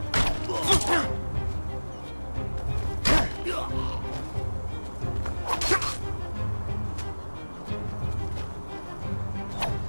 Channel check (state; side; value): inverted; both; correlation -1.00